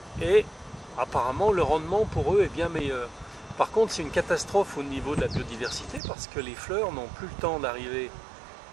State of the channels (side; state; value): left; drops out; at 6.0 s